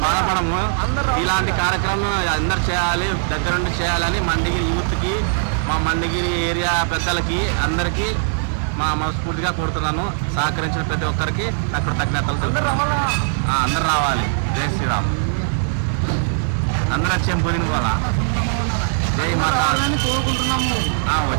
బాధపడము. ఇలాంటి కార్యక్రమం అందరు చేయాలి, దగ్గరుండి చేయాలని మండిగిరి యూత్కి, మా మండిగిరి ఏరియా పెద్దలకి అందరికీ మనస్ఫూర్తిగా కోరుతున్నాను. సహకరించిన ప్రతి ఒక్కరికి కృతజ్ఞతలు. అందరు రావాలి. జై శ్రీరామ్. అందరూ వచ్చేం పోయింది పోలా. జై మాతా.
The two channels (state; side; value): silent; left; digital silence